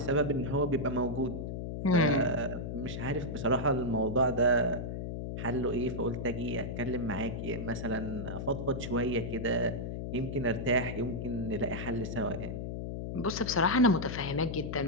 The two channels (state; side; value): noise; left; hum, 5 dB below the sound